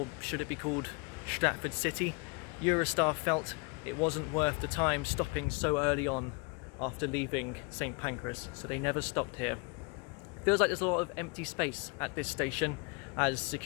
should it be called Stratford City? Eurostar felt it wasn't worth the time stopping so early on after leaving St Pancras, so they never stopped here. Feels like there's a lot of empty space at this station as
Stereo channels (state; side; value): quieter; right; 30.1 dB